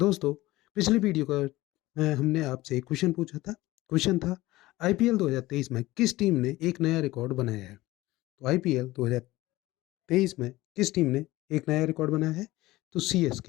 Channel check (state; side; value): quieter; right; 18.2 dB